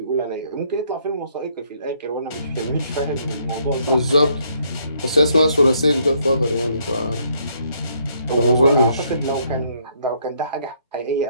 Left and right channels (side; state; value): both; inverted; correlation -0.69